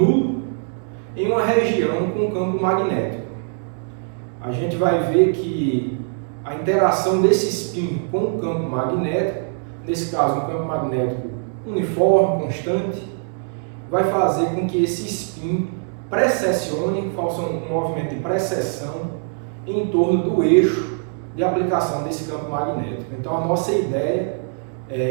em uma região com campo magnético. A gente vai ver que a interação desse spin com o campo magnético, nesse caso um campo magnético uniforme, constante, vai fazer com que esse spin precessione, faça um movimento de precessão em torno do eixo de aplicação desse campo magnético. Então a nossa ideia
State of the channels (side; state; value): left; silent; 61 dB below the other